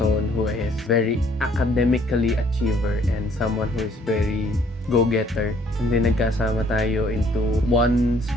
who is very academically achiever and someone who is very go-getter. And then nagkasama tayo into one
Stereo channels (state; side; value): normal; both; correlation 0.62